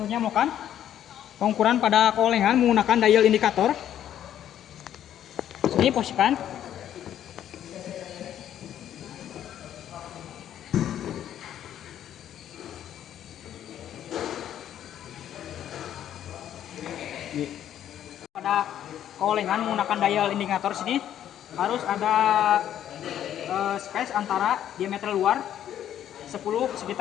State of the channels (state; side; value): quieter; right; 10.8 dB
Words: melakukan pengukuran pada keolehan menggunakan dial indikator. Ini posisikan. Pada keolengan menggunakan dial indikator sini harus ada space antara diameter luar